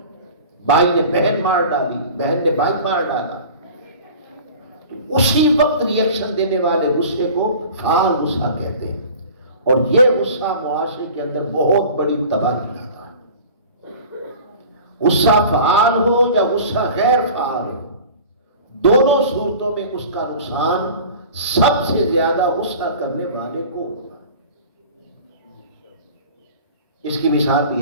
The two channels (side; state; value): both; inverted; correlation -0.41